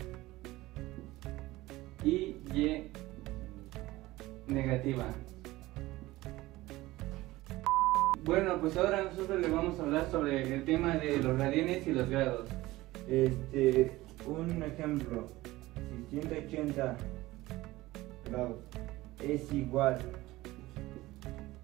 y negativa. Bueno, pues ahora nosotros le vamos a hablar sobre el tema de los radianes y los grados. Un ejemplo, si 180 grados es igual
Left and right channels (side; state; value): left; quieter; 18.4 dB